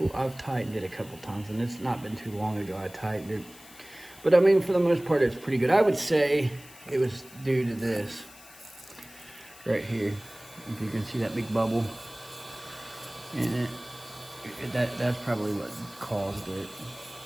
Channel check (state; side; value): noise; left; hiss, 20 dB below the sound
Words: tightened it a couple times, and it's not been too long ago I tightened it. But I mean, for the most part, it's pretty good. I would say it was due to this right here. If you can see that big bubble in it. That's probably what caused it.